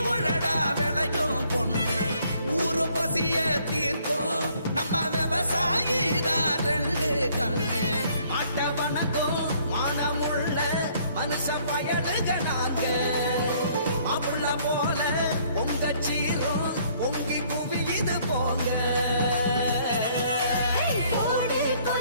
உழடா விளையும் பொண்ணு ஊரு பசிய தீர்க்கும் நம்ம விவசாயி தான் ரெண்டு கண்ணு மாட்ட வணக்கம் மானமுள்ள மனுஷ பயலுக நாங்க அப்புள்ள போல பொங்க சீரும் பொங்கி புவி இது போங்க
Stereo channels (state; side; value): inverted; both; correlation -0.63